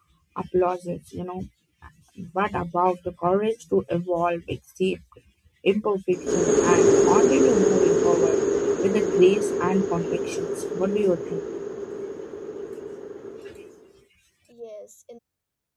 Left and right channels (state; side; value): identical; both; correlation 1.00